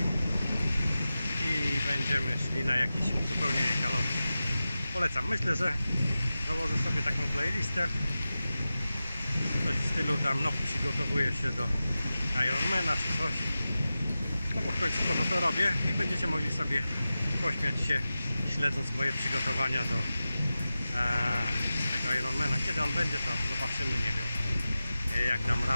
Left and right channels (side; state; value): both; inverted; correlation -0.94